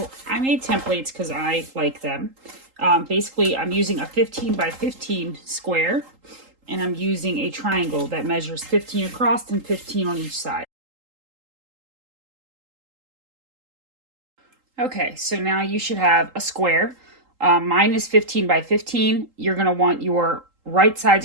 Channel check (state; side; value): late; left; 3.8 ms